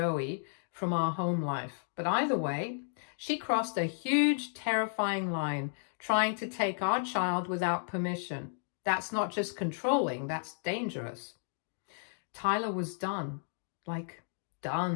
from our home life. But either way, she crossed a huge, terrifying line trying to take our child without permission. That's not just controlling, that's dangerous. Tyler was done. Like,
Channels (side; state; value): right; silent; digital silence